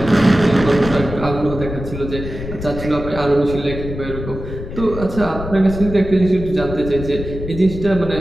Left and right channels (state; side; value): noise; left; rumble, 8 dB below the sound